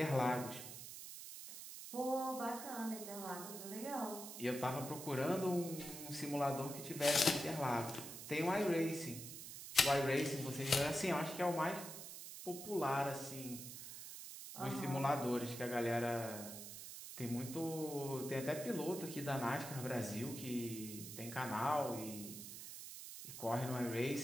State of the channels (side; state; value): right; noise; hiss, 10 dB below the sound